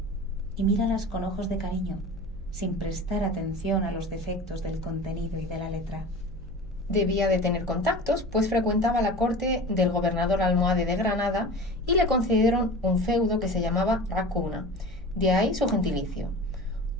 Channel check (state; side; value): noise; right; hum, 17 dB below the sound